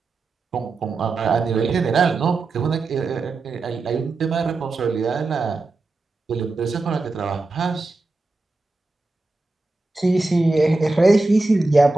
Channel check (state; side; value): quieter; left; 3.3 dB